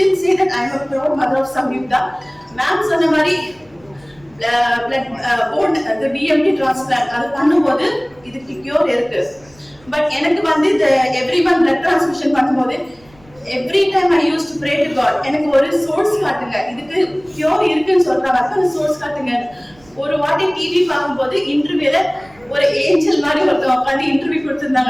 say that I am a proud mother of Samyukta. Ma'am சொன்ன மாதிரி blood BMT transplant அது பண்ணும்போது இதுக்கு கியூர் இருக்கு. பட் எனக்கு வந்து இந்த எவ்ரி மந்த் பிளட் டிரான்ஸ்மிஷன் பண்ணும்போது every time I use to pray to God, எனக்கு ஒரு சோர்ஸ் காட்டுங்க, இதுக்கு கியூர் இருக்குன்னு சொல்றாங்க, அந்த சோர்ஸ் காட்டுங்க. ஒரு வாட்டி டிவி பார்க்கும்போது இன்டர்வியூல ஒரு ஏஞ்சல் மாதிரி ஒருத்தவங்க உட்காந்து இன்டர்வியூ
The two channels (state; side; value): noise; right; rumble, 29 dB below the sound